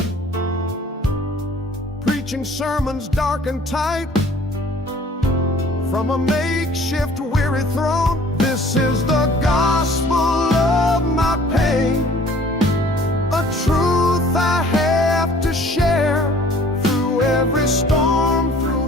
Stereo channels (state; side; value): normal; both; correlation 0.53